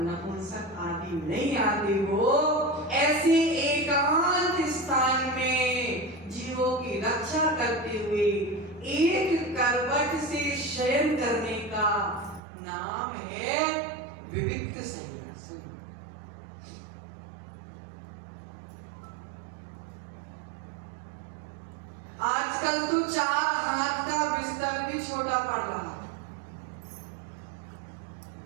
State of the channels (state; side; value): drops out; left; at 12.4 s